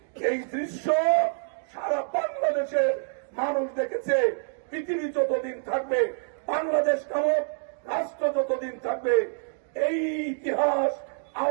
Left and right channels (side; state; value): left; silent; digital silence